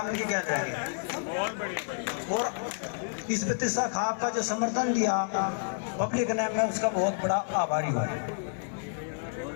इनकी कहते रहेंगे। और इस बत्तीसा खाप का जो समर्थन दिया पब्लिक ने, मैं उसका बहुत बड़ा आभारी हूँ।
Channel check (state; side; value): silent; right; 55 dB below the other